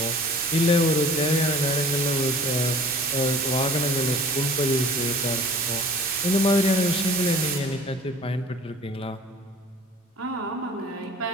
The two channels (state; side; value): normal; both; correlation 0.46